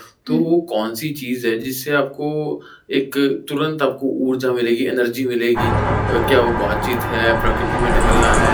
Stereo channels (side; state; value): both; identical; correlation 1.00